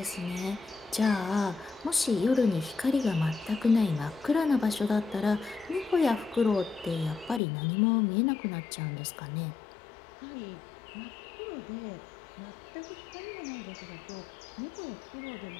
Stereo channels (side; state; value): right; drops out; at 7.4 s